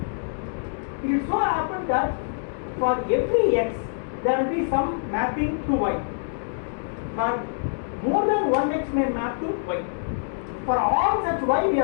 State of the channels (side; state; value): right; silent; digital silence